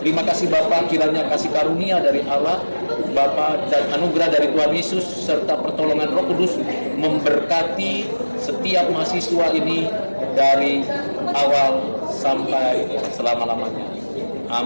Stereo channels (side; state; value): both; inverted; correlation -1.00